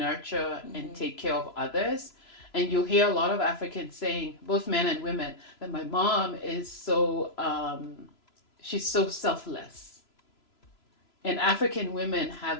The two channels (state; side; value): late; right; 3.0 ms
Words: and take care of others. And you'll hear a lot of Africans saying, both men and women, that my mom is she's so selfless. And African women